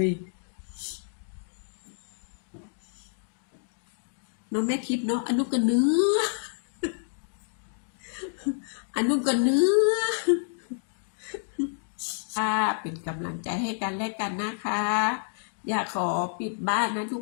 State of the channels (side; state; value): right; silent; digital silence